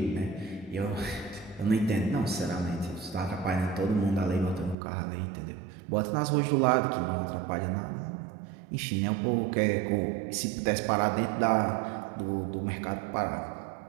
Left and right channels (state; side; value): drops out; left; at 4.8 s